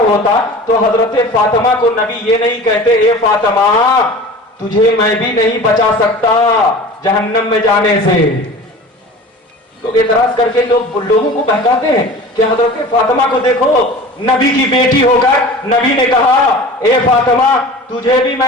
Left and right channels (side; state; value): both; normal; correlation 0.38